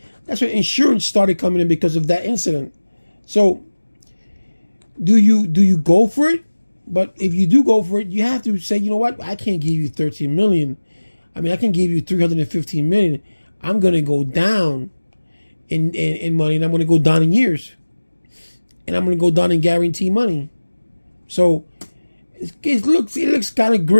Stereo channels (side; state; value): both; inverted; correlation -1.00